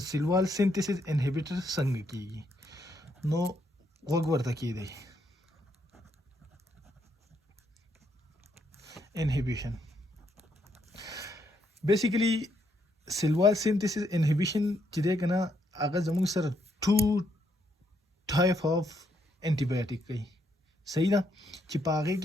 सिंथेसिस इनहिबिटर संग की नो वगवर्ता की दे inhibition basically Silwal synthesis inhibition चिदे कना अगर जमुंग सर 2 टाइप ऑफ एंटीबायोटिक कई सही दा चिपागे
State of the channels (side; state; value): both; normal; correlation 0.75